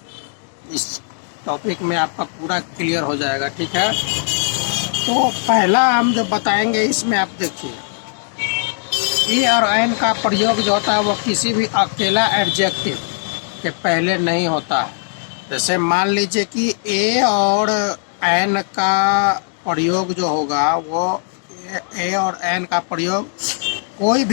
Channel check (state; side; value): silent; right; digital silence